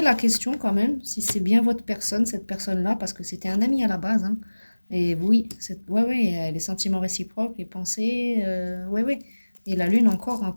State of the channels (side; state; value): both; inverted; correlation -1.00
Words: la question quand même, si c'est bien votre personne, cette personne-là, parce que c'était un ami à la base. Hein. Et oui, ouais, les sentiments réciproques, les pensées, ouais. Et la lune encore en